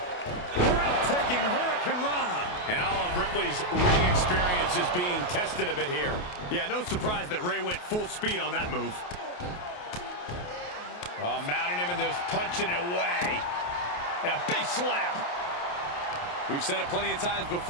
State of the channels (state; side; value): late; right; 28 ms